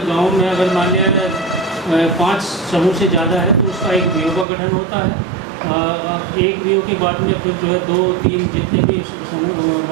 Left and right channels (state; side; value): drops out; left; at 4.5 s